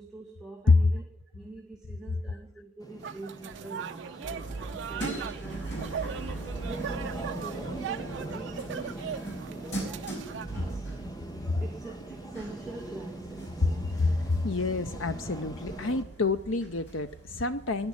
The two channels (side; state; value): both; normal; correlation 0.63